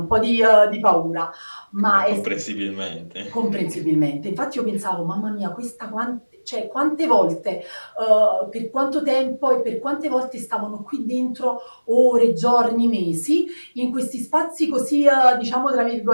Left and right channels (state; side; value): inverted; both; correlation -1.00